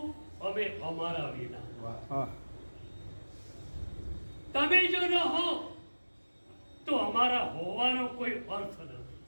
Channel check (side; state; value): both; inverted; correlation -1.00